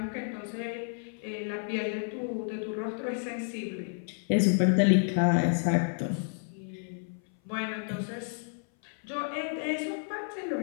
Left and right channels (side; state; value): right; silent; 57 dB below the other